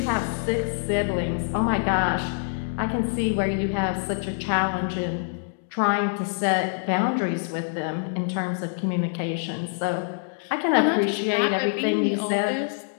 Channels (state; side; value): silent; right; digital silence